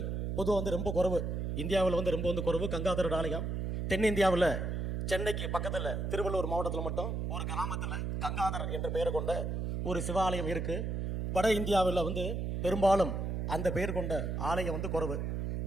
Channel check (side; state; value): right; noise; hum, 2 dB below the sound